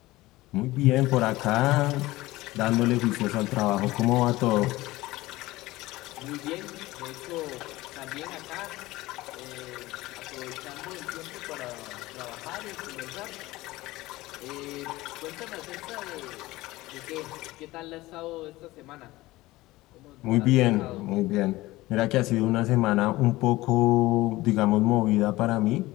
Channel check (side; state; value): right; quieter; 18.7 dB